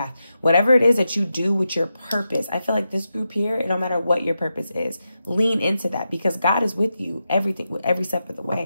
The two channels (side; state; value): both; inverted; correlation -0.88